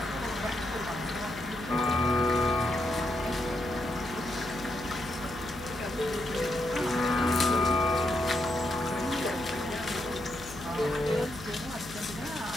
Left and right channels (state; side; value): noise; left; hum, 15 dB below the sound